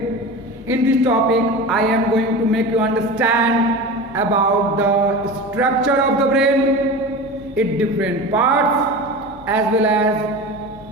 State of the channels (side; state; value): both; normal; correlation 0.30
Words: In this topic, I am going to make you understand about the structure of the brain, its different parts, as well as